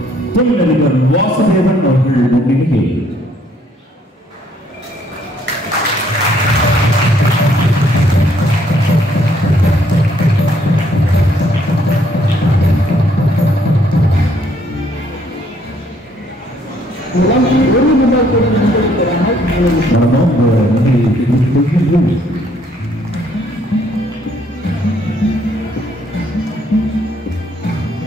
தொழிலதிபர் வாசுதேவன் அவர்கள் முன்னிலையில்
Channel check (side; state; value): both; normal; correlation 0.66